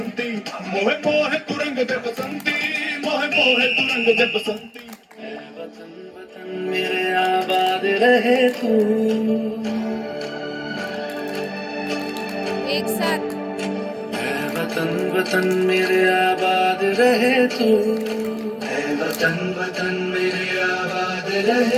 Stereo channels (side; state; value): both; identical; correlation 1.00